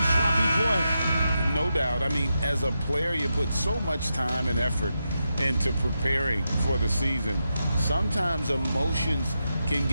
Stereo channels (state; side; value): inverted; both; correlation -0.87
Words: sloppy play. No doubt. I mean, as a player, you put so much time and effort into preparing for the season. Sometimes emotions can